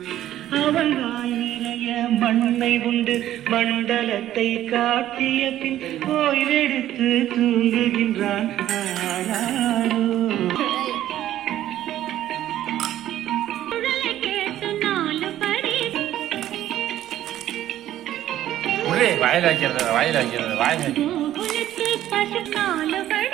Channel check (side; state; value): left; quieter; 12.7 dB